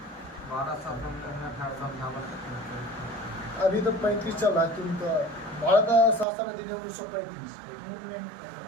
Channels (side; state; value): left; drops out; at 6.2 s